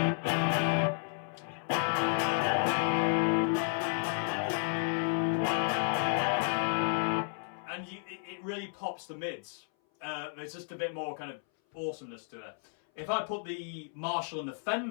And it really pops the mids. There's just a bit more kind of awesomeness to it. If I put the Marshall and the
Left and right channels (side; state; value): right; silent; 56 dB below the other